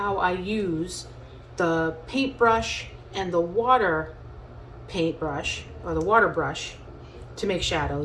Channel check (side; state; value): both; identical; correlation 1.00